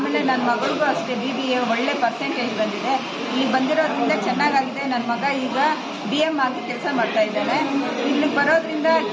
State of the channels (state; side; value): identical; both; correlation 1.00